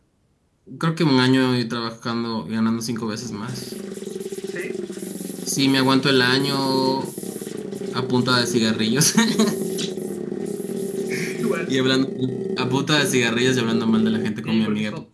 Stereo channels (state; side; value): identical; both; correlation 1.00